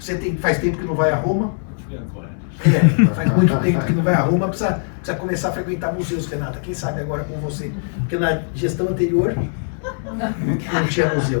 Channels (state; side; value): silent; right; digital silence